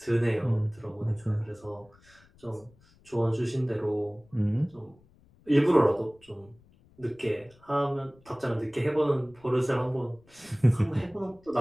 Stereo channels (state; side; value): noise; left; rumble, 29 dB below the sound